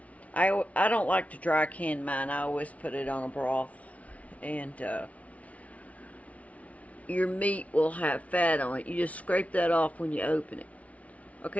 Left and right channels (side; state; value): right; late; 0.067 ms